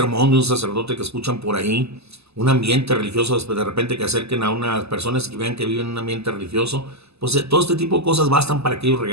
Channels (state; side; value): late; left; 0.79 ms